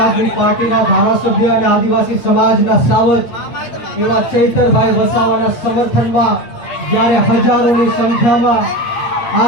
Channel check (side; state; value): right; late; 8.6 ms